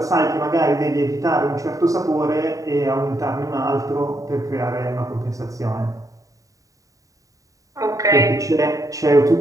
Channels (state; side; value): late; left; 0.16 ms